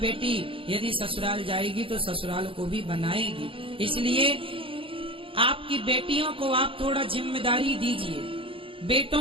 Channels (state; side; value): late; left; 0.26 ms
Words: यदि ससुराल जाएगी तो ससुराल को भी बनाएगी। इसलिए आपकी बेटियों को आप थोड़ा जिम्मेदारी दीजिए,